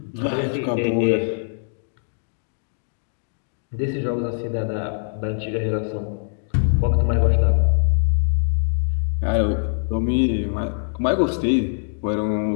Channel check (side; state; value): right; silent; digital silence